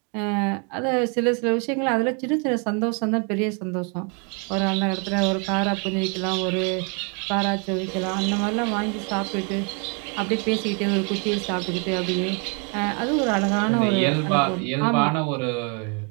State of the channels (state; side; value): quieter; left; 36.0 dB